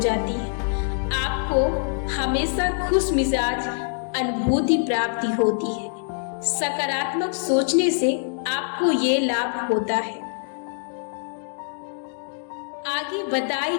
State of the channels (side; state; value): right; silent; digital silence